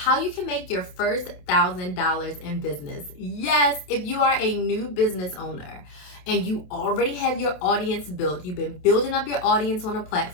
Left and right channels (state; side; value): late; right; 27 ms